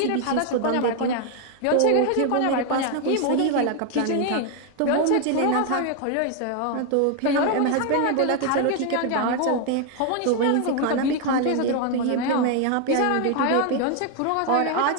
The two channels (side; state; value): both; different; correlation 0.01